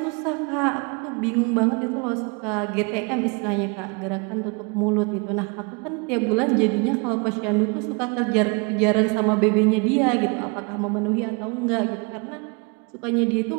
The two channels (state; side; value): quieter; left; 31.6 dB